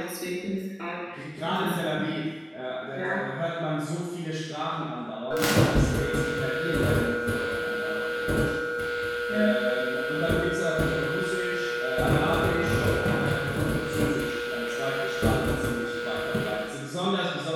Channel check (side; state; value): both; identical; correlation 1.00